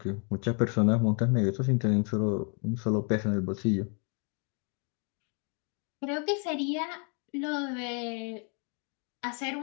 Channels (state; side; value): quieter; right; 38.0 dB